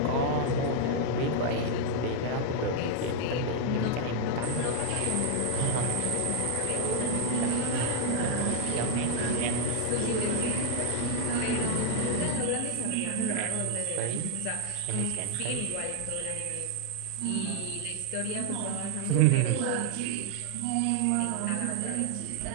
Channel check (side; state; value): both; different; correlation 0.00